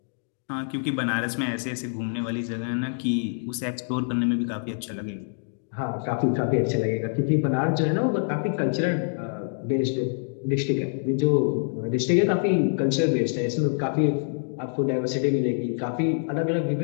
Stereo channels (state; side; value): silent; right; digital silence